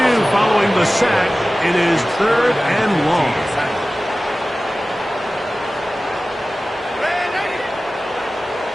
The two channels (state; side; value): normal; both; correlation 0.96